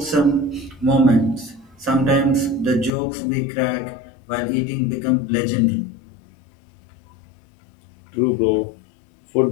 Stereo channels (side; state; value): right; drops out; at 2.9 s